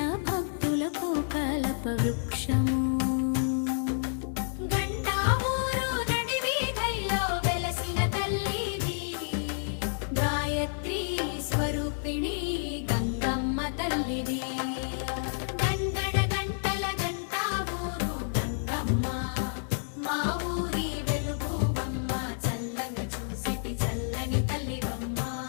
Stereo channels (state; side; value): silent; right; 58 dB below the other